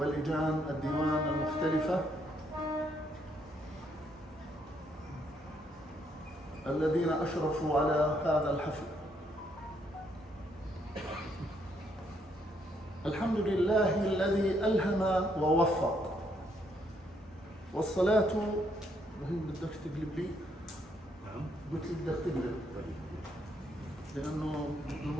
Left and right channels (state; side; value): normal; both; correlation 0.72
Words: الديوان المختلفة الذين أشرفوا على هذا الحفل. الحمد لله الذي ألهم ووفق، والصلاة رهيب. بدك تقلب لي؟ نعم. قلت لي بدك تقلب لأنه